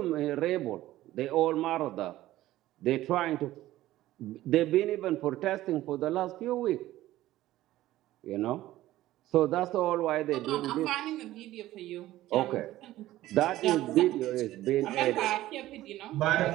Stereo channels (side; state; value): left; quieter; 15.3 dB